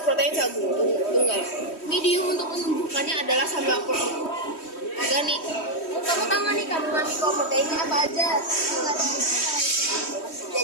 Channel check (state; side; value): late; right; 3.1 ms